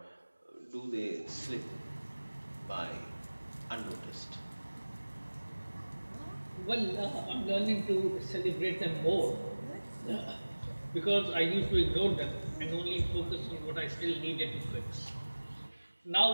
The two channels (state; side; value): inverted; both; correlation -1.00